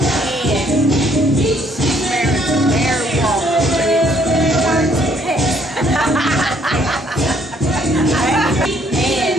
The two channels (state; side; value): normal; both; correlation 0.66